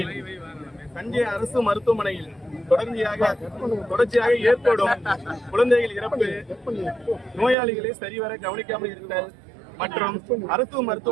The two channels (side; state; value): left; drops out; at 7.6 s